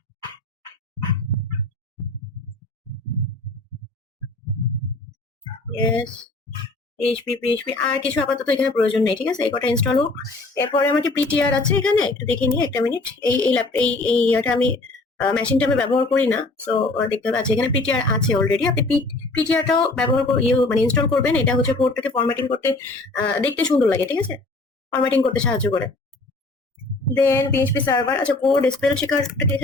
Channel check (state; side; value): quieter; right; 3.1 dB